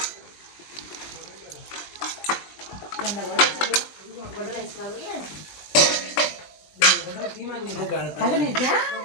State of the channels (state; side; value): late; right; 20 ms